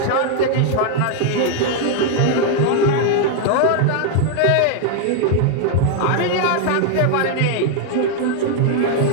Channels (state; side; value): different; both; correlation 0.00